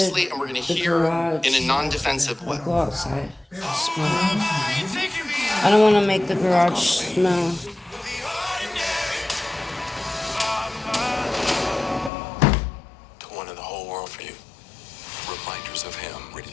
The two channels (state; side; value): drops out; right; at 12.1 s